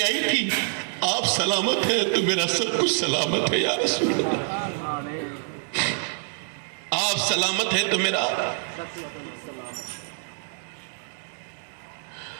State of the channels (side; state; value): left; silent; 61 dB below the other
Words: آئی تھی، آپ سلامت ہیں تو میرا سب کچھ سلامت ہے یا رسول اللہ. آپ سلامت ہیں تو میرا.